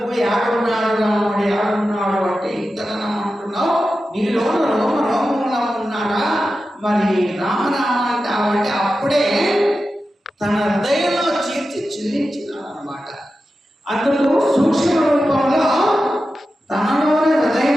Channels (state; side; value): normal; both; correlation 0.92